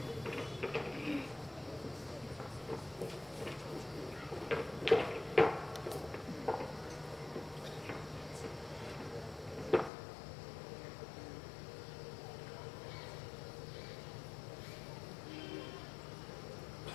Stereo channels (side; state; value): right; drops out; at 9.9 s